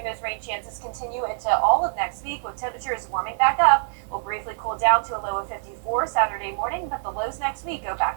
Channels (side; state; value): left; silent; digital silence